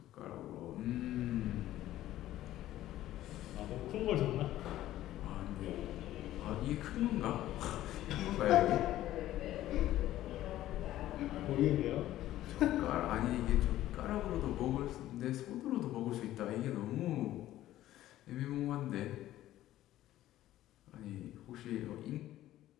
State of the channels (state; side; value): quieter; right; 14.1 dB